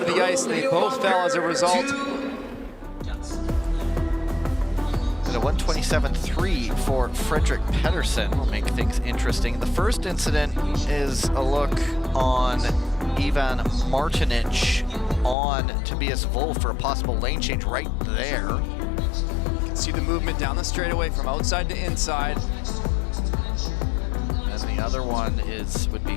the ice, and they both fell as a result. And a 127.3 for Frederick Pedersen will make things interesting. The first incident is a look on Ivan Martinic on Tobias Wolf for a possible lane change right there. You can see the movement down the straightaway from outside to inside. And the other one would be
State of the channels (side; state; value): right; drops out; at 15.4 s